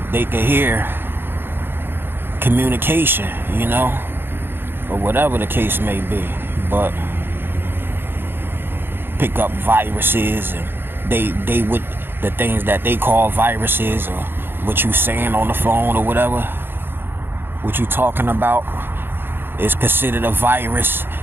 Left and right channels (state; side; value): late; left; 0.10 ms